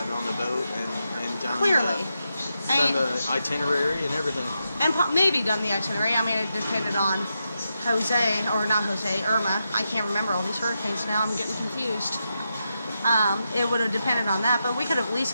on the boat and done Clearly. the itinerary and everything. And maybe done the itinerary. I mean, it depended on Irma. I can't remember all these hurricanes now. I'm getting confused. It would have depended on that, but we could have at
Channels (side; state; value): both; inverted; correlation -0.86